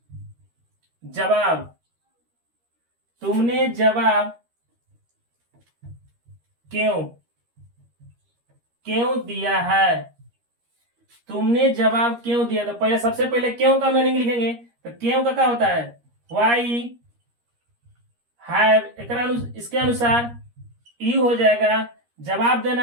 जवाब क्यों दिया है? तुमने जवाब क्यों दिया? तो पहले सबसे पहले क्यों का मीनिंग लिखेंगे। तो क्यों का क्या होता है वाई हैव। इसके अनुसार यू हो जाएगा, जवाब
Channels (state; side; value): late; left; 13 ms